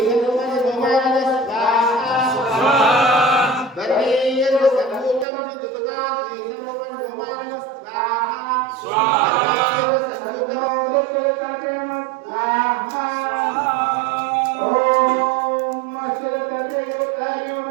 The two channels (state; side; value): drops out; left; at 5.2 s